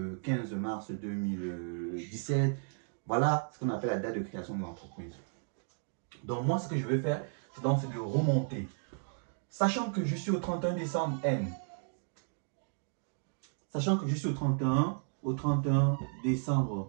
15 mars 2017. Voilà ce qu'on appelle la date de création de l'entreprise. Donc moi, ce que je vais faire, c'est de remonter. Sachant que je suis au 31 décembre N. Sachant que je suis au 31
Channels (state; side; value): silent; left; digital silence